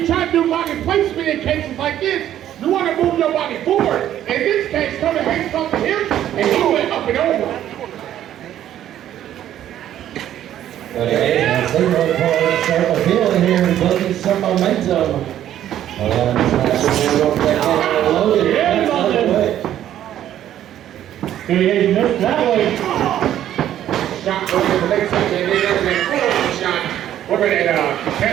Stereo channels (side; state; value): left; quieter; 11.5 dB